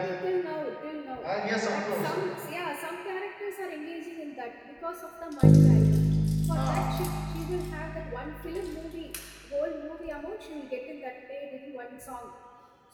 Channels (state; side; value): identical; both; correlation 1.00